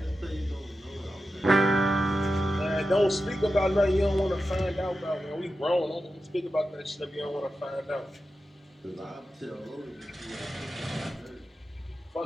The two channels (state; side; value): normal; both; correlation 0.91